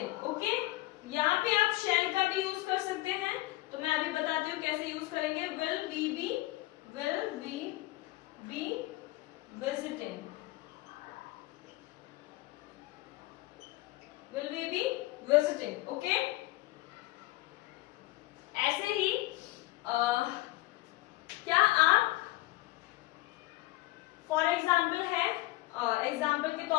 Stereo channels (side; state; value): right; quieter; 19.0 dB